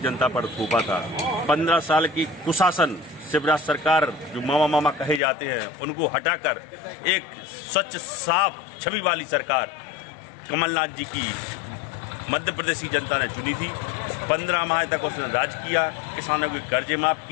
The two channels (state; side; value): drops out; right; at 5.2 s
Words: जनता पर थोपा था। 15 साल की कुशासन शिवराज सरकार, जो मामा मामा कहे जाते हैं, उनको हटाकर एक स्वच्छ साफ छवि वाली सरकार कमलनाथ जी की मध्य प्रदेश की जनता ने चुनी थी। 15 माह तक उसने राज किया, किसानों के कर्जे माफ